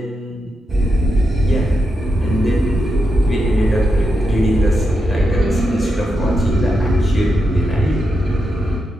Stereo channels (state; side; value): normal; both; correlation 0.85